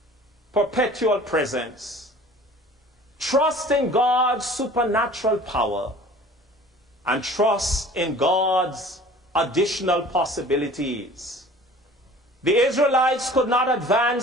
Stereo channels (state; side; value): normal; both; correlation 0.46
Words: perpetual presence. Trust in God's supernatural power, and trust in God's additional possibilities. The Israelites could not